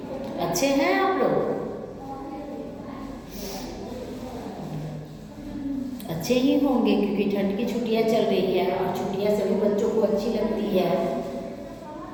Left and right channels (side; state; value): both; identical; correlation 1.00